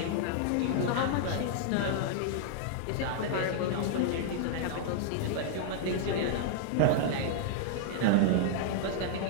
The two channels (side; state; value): both; different; correlation -0.01